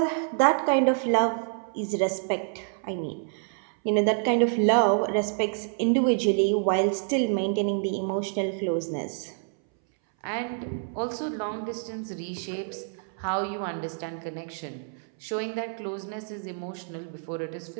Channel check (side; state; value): left; silent; 60 dB below the other